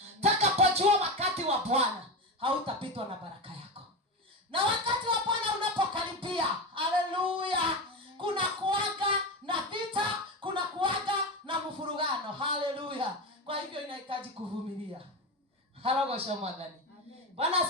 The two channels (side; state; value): both; normal; correlation 0.19